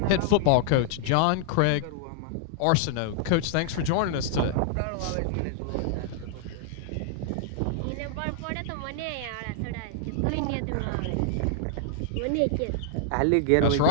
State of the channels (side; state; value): both; different; correlation -0.01